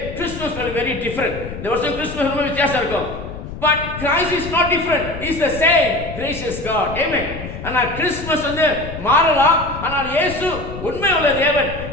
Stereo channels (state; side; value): noise; left; rumble, 10 dB below the sound